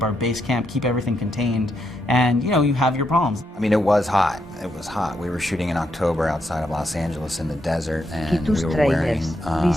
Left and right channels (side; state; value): both; normal; correlation 0.80